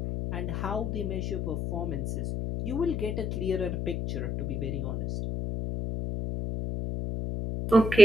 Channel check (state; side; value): noise; left; hum, 4 dB below the sound